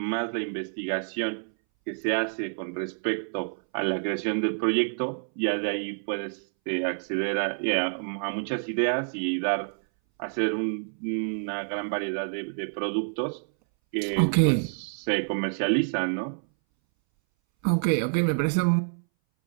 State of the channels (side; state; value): left; silent; 60 dB below the other